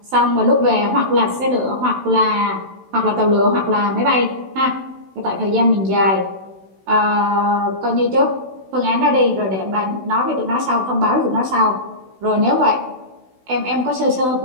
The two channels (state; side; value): late; left; 16 ms